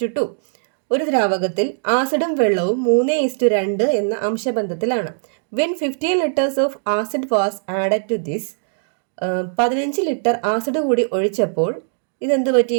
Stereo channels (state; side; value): silent; left; digital silence